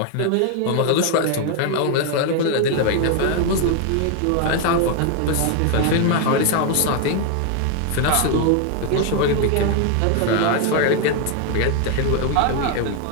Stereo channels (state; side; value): different; both; correlation 0.01